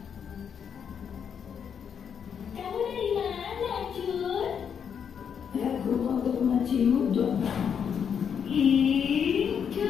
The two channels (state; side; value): quieter; right; 7.5 dB